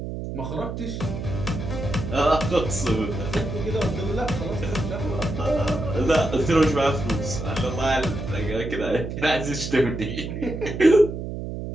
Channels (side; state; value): right; noise; hum, 6 dB below the sound